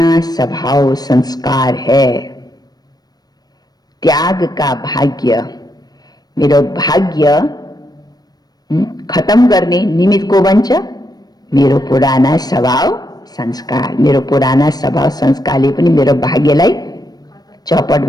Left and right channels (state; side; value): late; right; 0.19 ms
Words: स्वभाव संस्कार है। त्याग का भाग्य, मेरो भाग्य खत्म गर्ने निमित्त को बन्छ, मेरो पुराना स्वभाव संस्कार। मेरो पुराना स्वभाव संस्कारले पनि मेरो भाग्यलाई चौपट